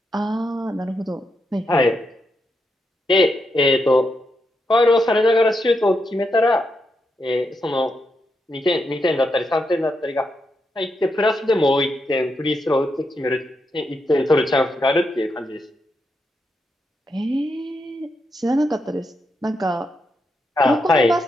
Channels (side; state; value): both; normal; correlation 0.83